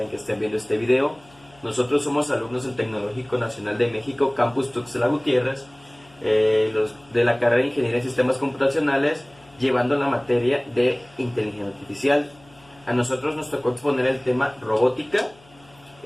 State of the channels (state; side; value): noise; left; hum, 28 dB below the sound